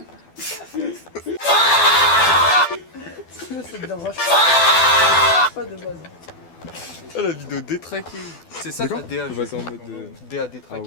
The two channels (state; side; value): late; right; 12 ms